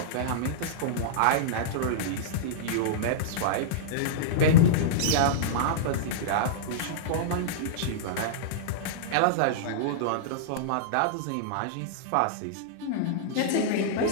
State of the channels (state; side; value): different; both; correlation -0.03